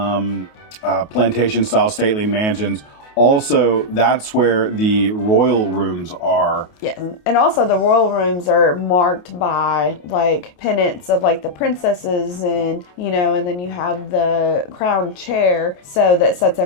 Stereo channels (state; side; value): late; right; 28 ms